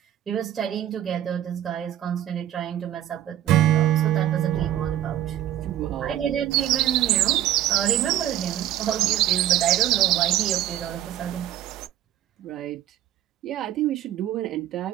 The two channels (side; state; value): left; quieter; 12.2 dB